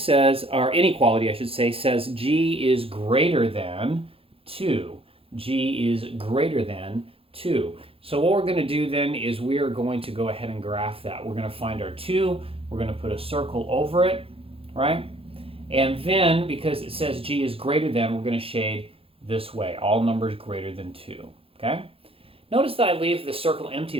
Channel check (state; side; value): late; left; 0.27 ms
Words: or inequality, I should say, says G is greater than 2. G is greater than 2. So what we're going to do then is we are going to go ahead and graph that. We're going to find our 2. We're going to put a circle over it, right? And then, because it says G is greater than, we're going to shade this way, all numbers greater than 2, okay? Notice that I leave the circle empty